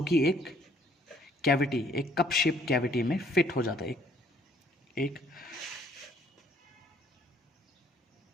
कि एक कैविटी, एक कप शेप कैविटी में फिट हो जाता है। एक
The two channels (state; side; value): normal; both; correlation 0.62